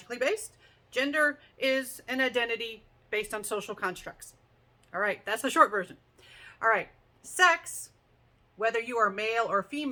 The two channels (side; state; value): both; identical; correlation 1.00